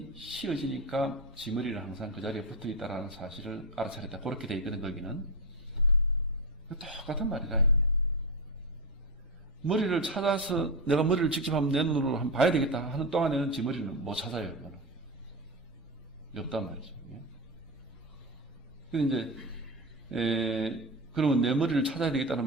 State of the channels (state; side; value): normal; both; correlation 0.14